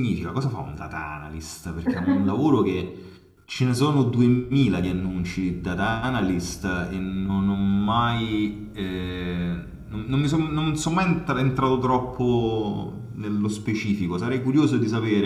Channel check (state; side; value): identical; both; correlation 1.00